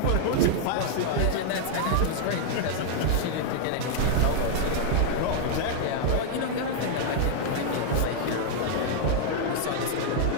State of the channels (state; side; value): different; both; correlation -0.01